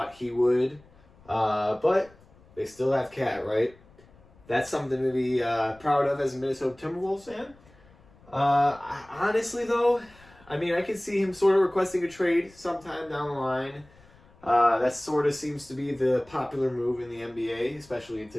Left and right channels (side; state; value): left; noise; rumble, 27 dB below the sound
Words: he would. But they still have Cat, right? That's something to be proud of as a Minnesota Timberwolves fan. Honestly, though, I mean, I can see him sort of requesting a trade sometime down the line. That sort of seems to be the popular move in the NBA, especially in